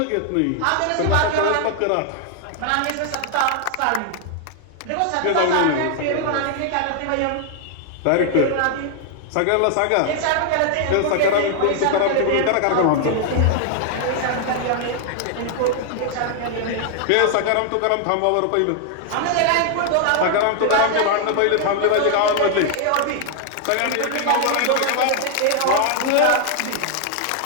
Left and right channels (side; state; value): both; different; correlation 0.00